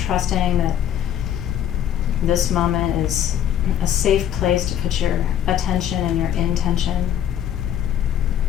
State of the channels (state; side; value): quieter; right; 10.2 dB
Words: trusting that this moment is a safe place to put your attention and your intention.